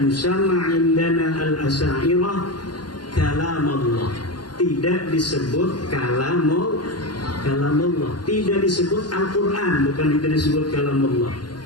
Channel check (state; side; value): late; right; 0.70 ms